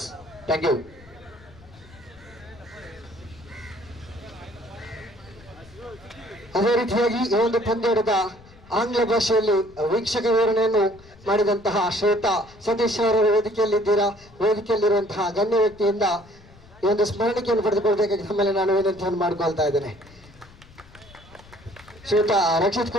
Thank you. ಅದೇ ರೀತಿಯಾಗಿ ಈ ಒಂದು ಪಂದ್ಯದ ಆಂಗ್ಲ ಭಾಷೆಯಲ್ಲಿ ವೀಕ್ಷಕ ವಿವರಣೆಯನ್ನು ಮಾಡಿದಂತಹ ಶ್ವೇತಾ ಸತೀಶ್ ಅವರ ವೇದಿಕೆಯಲ್ಲಿದ್ದೀರಾ. ವೇದಿಕೆಯಲ್ಲಿರುವಂತಹ ಗಣ್ಯ ವ್ಯಕ್ತಿಯಿಂದ ಈ ಒಂದು ಸ್ಮರಣಿಕೆಯನ್ನು ಪಡೆದುಕೊಳ್ಬೇಕಾಗಿ ತಮ್ಮಲ್ಲಿ ನಾನು ವಿನಂತಿಯನ್ನು ಮಾಡಿಕೊಳ್ತಾ ಇದ್ದೇನೆ. ಶ್ವೇತಾ ರಕ್ಷಿತ್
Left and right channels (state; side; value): noise; left; rumble, 23 dB below the sound